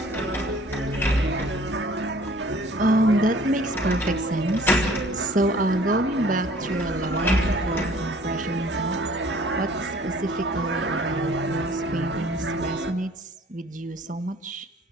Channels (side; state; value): both; normal; correlation 0.53